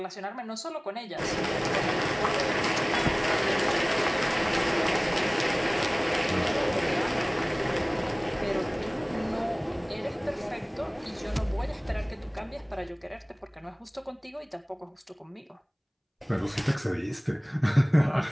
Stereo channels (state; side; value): identical; both; correlation 1.00